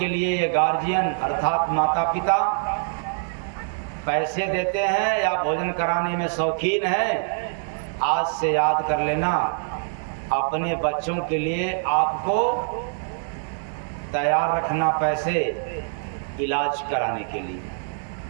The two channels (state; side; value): silent; left; digital silence